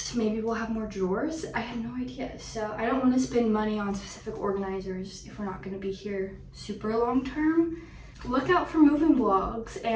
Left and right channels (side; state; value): both; identical; correlation 1.00